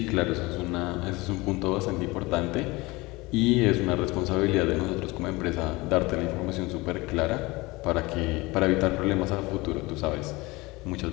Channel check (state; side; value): quieter; right; 22.6 dB